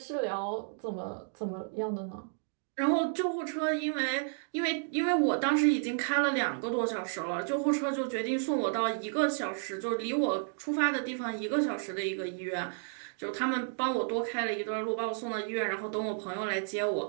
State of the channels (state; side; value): silent; left; digital silence